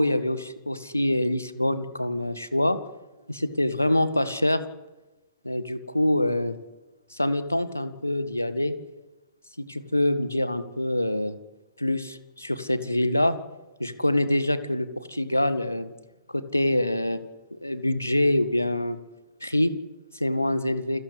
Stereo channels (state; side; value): inverted; both; correlation -0.93